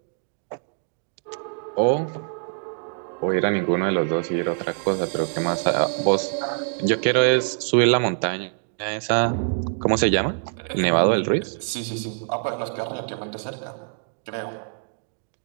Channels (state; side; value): silent; left; digital silence